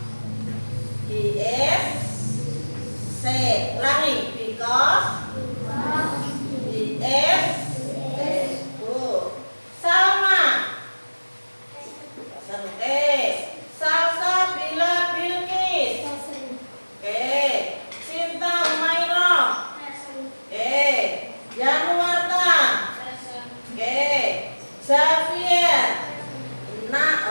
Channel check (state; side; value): inverted; both; correlation -1.00